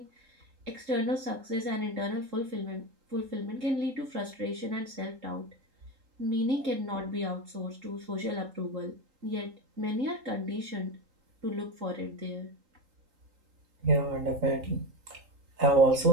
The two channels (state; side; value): late; left; 3.8 ms